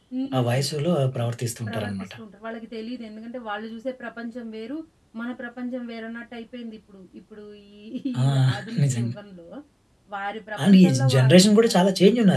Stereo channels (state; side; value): identical; both; correlation 1.00